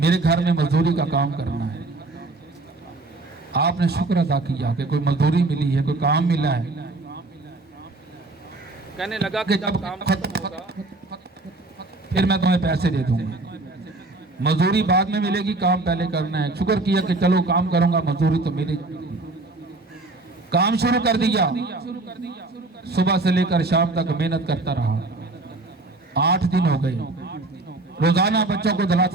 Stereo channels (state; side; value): quieter; left; 3.1 dB